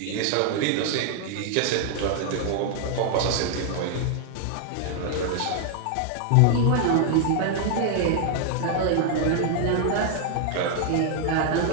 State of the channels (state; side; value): different; both; correlation 0.00